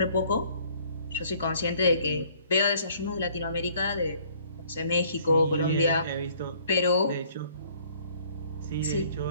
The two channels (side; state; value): both; inverted; correlation -0.59